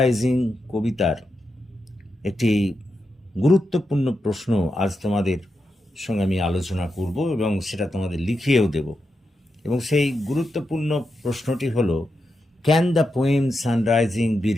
কবিতার একটি গুরুত্বপূর্ণ প্রশ্ন আজ তোমাদের সঙ্গে আমি আলোচনা করব এবং সেটা তোমাদের লিখিয়েও দেব। এবং সেই গুরুত্বপূর্ণ প্রশ্নটি হলো, Can the poem Sunrising be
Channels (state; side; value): normal; both; correlation 0.87